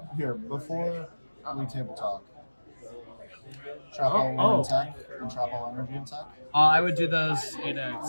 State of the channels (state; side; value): inverted; both; correlation -1.00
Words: here, before we table talk, trap all attack and trap all energy attack. I would do those in a